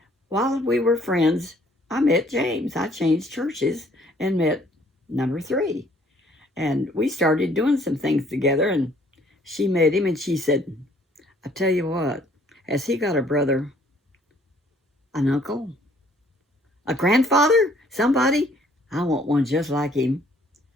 while we were friends, I met James. I changed churches and met number 3. And we started doing some things together, and she met him, and she said, I tell you what, has he got a brother, an uncle, a grandfather, somebody? I want one just like him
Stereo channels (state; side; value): normal; both; correlation 0.61